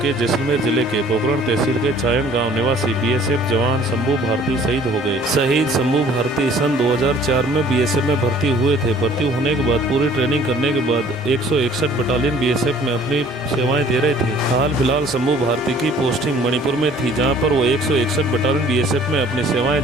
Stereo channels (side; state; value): both; normal; correlation 0.54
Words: के जैसलमेर जिले के पोखरण तहसील के चायन गांव निवासी BSF जवान शंभू भारती शहीद हो गए। शहीद शंभू भारती सन 2004 में BSF में भर्ती हुए थे। भर्ती होने के बाद पूरी ट्रेनिंग करने के बाद 161 बटालियन BSF में अपनी सेवाएं दे रहे थे। हाल फिलहाल शंभू भारती की पोस्टिंग मणिपुर में थी, जहाँ पर वो 161 बटालियन BSF में अपनी सेवाएं